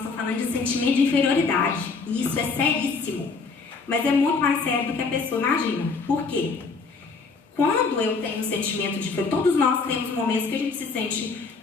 falando de sentimento de inferioridade. E isso é seríssimo. Mas é muito mais sério do que a pessoa imagina. Por quê? Quando eu tenho um sentimento de... Todos nós temos momentos que a gente se sente,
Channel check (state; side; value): quieter; right; 4.5 dB